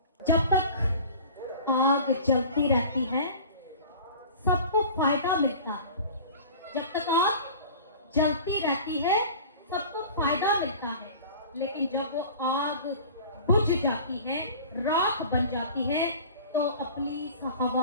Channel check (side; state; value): both; inverted; correlation -0.41